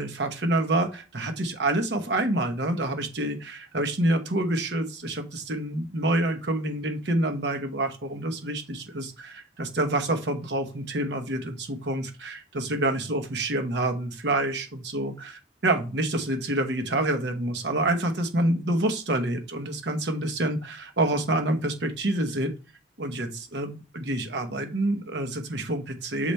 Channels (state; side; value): normal; both; correlation 0.37